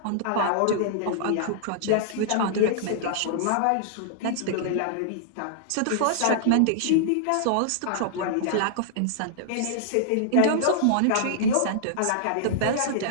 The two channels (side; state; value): both; different; correlation -0.01